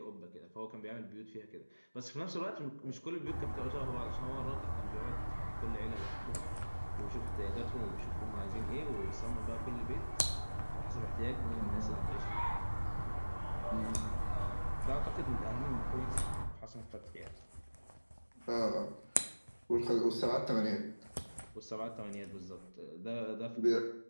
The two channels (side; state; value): both; inverted; correlation -1.00